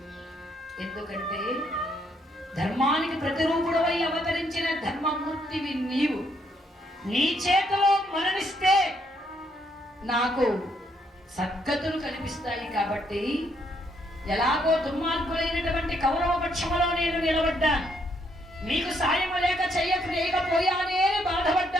ఎందుకంటే ధర్మానికి ప్రతిరూపుడవై అవతరించిన ధర్మమూర్తివి నీవు. నీ చేతిలో మరణిస్తే నాకు సద్గతులు కనిపిస్తాయి. కాబట్టి ఎలాగో దుర్మార్గులైనటువంటి కౌరవ పక్షములో నేను నిలబడ్డాను, మీకు సాయం లేక చేయకపోయానే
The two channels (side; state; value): both; normal; correlation 0.72